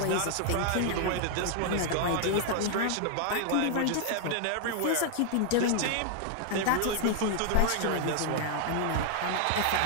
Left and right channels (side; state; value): both; different; correlation 0.00